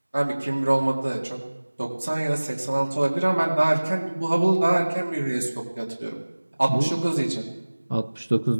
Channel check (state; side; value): inverted; both; correlation -1.00